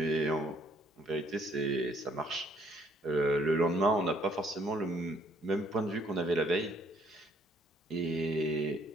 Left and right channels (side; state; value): both; normal; correlation 0.64